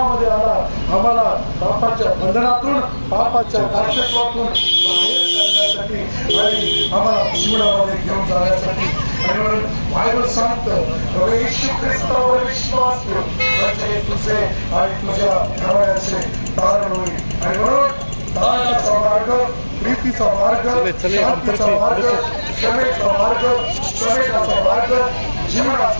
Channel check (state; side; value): inverted; both; correlation -1.00